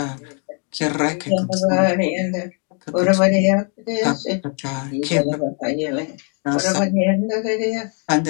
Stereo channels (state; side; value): quieter; right; 40.0 dB